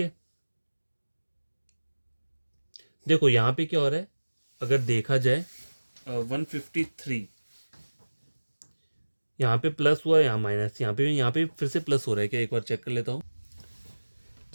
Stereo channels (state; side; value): inverted; both; correlation -1.00